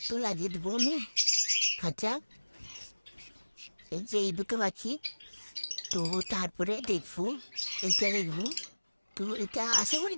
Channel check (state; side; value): inverted; both; correlation -1.00